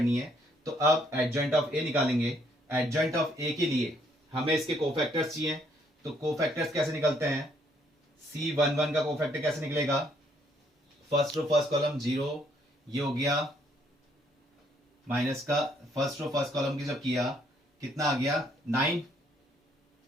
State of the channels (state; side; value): normal; both; correlation 0.68